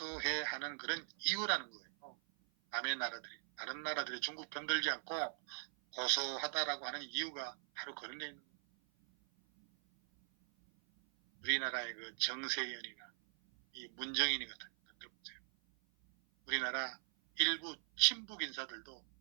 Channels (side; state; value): left; silent; 51 dB below the other